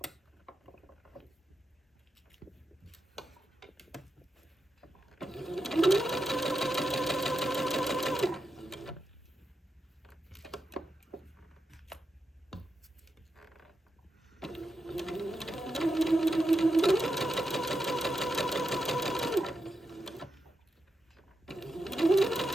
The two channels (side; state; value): both; normal; correlation 0.86